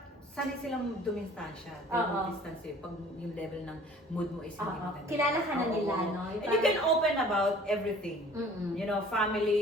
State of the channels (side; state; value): both; normal; correlation 0.50